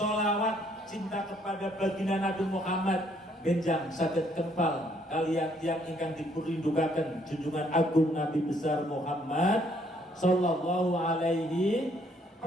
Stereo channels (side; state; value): both; normal; correlation 0.67